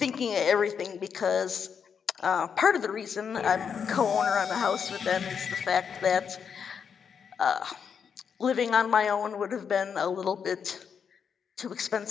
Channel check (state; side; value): quieter; right; 6.9 dB